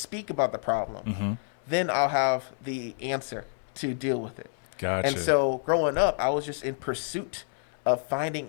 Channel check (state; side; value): silent; right; 59 dB below the other